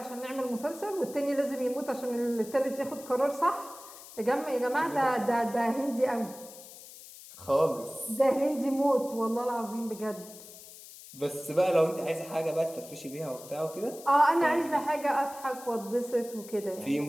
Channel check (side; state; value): left; noise; hiss, 17 dB below the sound